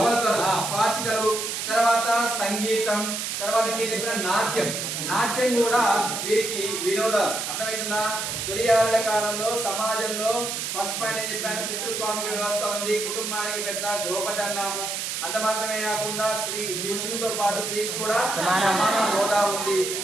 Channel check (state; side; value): noise; right; hiss, 3 dB below the sound